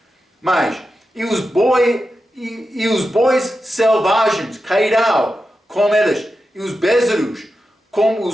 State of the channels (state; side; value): normal; both; correlation 0.90